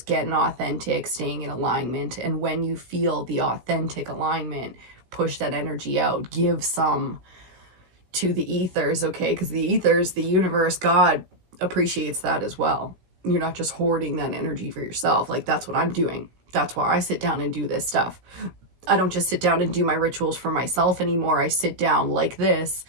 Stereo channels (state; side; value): late; left; 16 ms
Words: authentic, staying in alignment. And when you feel the authentic alignment, push that energy out, give some to the ethers, okay? Because the ethers, the universe, God appreciates that as well. You're not just hoarding that energy for yourself. Like, that's what I'm doing. That's why I sit down and do this stuff. I don't just sit down and do my rituals for myself anymore. I sit down like this.